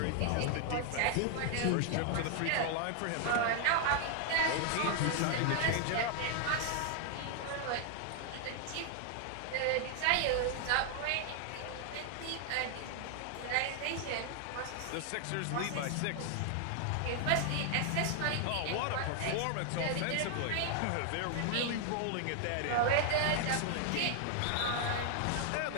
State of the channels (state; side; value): different; both; correlation 0.00